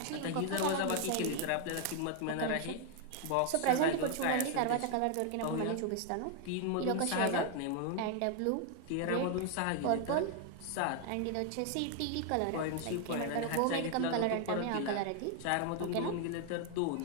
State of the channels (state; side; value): different; both; correlation 0.00